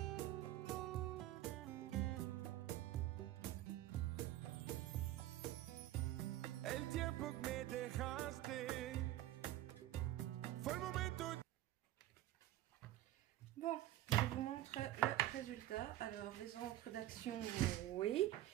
El tiempo que me dejaste fue el momento. Bon, je vous montre le résultat. Alors, les encres d'Action, oui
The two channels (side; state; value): left; quieter; 14.4 dB